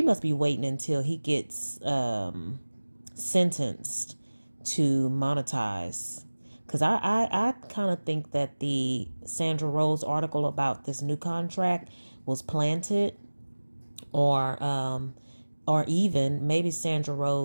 must be waiting until he gets sentenced to monetize. Because I kind of think that the Sandra Rose article about this new contract was planted, or even maybe Sandra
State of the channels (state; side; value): inverted; both; correlation -1.00